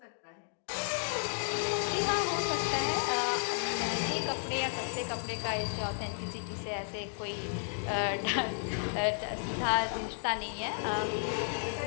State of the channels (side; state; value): right; silent; digital silence